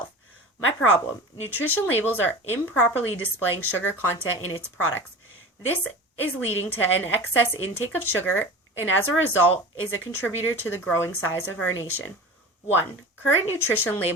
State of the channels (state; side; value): normal; both; correlation 0.34